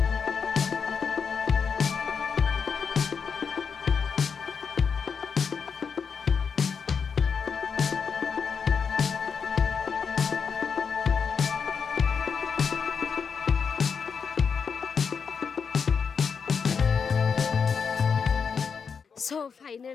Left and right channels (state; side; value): quieter; right; 6.1 dB